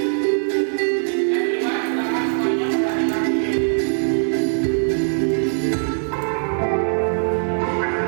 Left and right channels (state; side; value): silent; left; digital silence